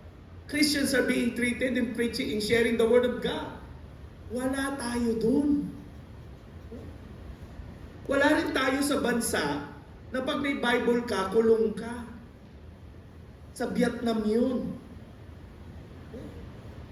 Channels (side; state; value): both; identical; correlation 1.00